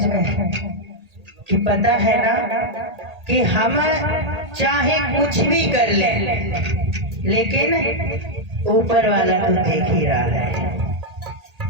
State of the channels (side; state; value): left; late; 1.8 ms